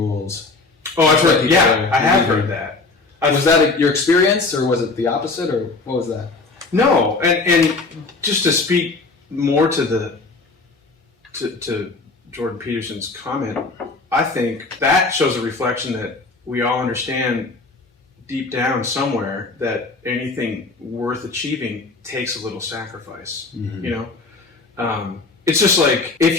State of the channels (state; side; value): quieter; right; 3.7 dB